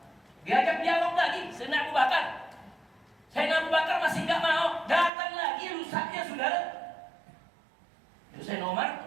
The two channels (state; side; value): drops out; left; at 5.1 s